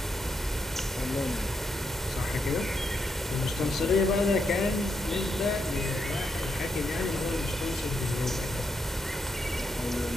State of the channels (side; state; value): both; normal; correlation 0.80